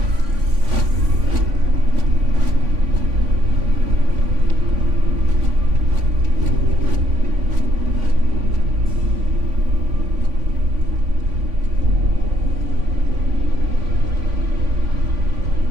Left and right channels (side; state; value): left; late; 3.5 ms